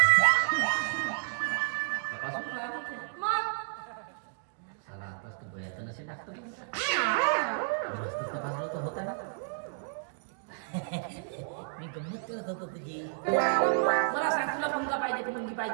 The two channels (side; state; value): left; silent; digital silence